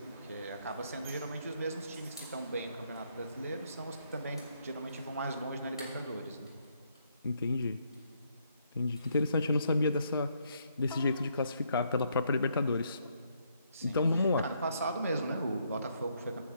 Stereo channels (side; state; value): both; inverted; correlation -0.73